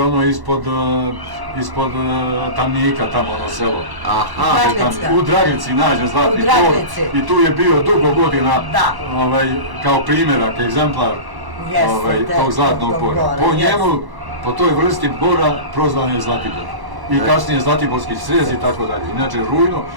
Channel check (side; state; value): left; late; 1.1 ms